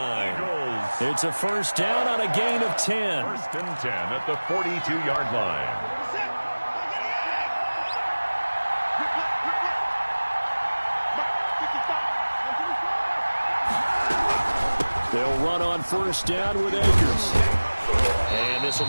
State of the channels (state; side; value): inverted; both; correlation -1.00